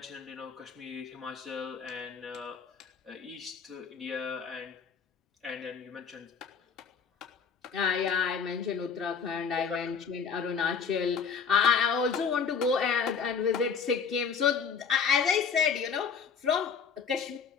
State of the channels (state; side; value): quieter; right; 6.2 dB